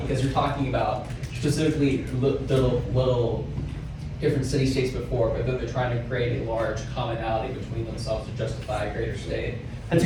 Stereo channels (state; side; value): identical; both; correlation 1.00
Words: Because you're talking about specifically the little different city-states before, but then they're trying to create a large commonality between themselves to justify a greater state. That's